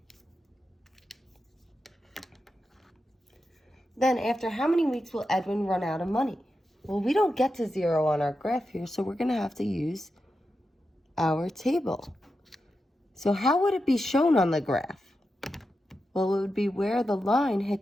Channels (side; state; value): both; normal; correlation 0.89